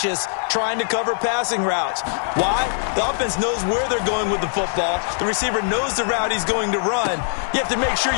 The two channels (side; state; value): right; silent; 58 dB below the other